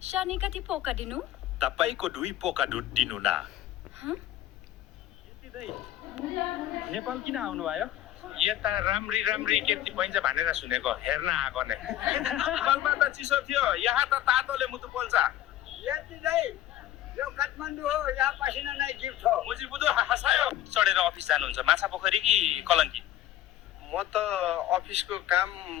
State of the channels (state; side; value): quieter; right; 13.0 dB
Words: शानी कति पोका दिनु तपाईको 2 पोका दुध दिनु न। नेपाल किन आउनु भयो? यता राम्री राम्री केटी पाइन्छ भनेर सुनेको, हेर्न आएको नै। नेपालमा त चिसो थियो, यहाँ त तातोले मुटु पोल्छ। यति नै यो काठमाडौँ हो, यहाँ पसिना नै गिफ्ट हो। मुजी बुझो हसायो। चढेर अफिस जानुहुन्छ माछा पोखरी कि कलङ्की? म त अफिसको काम